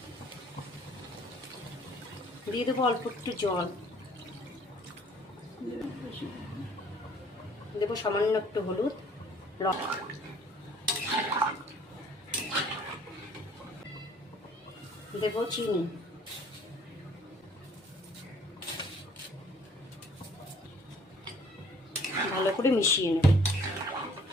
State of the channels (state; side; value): normal; both; correlation 0.56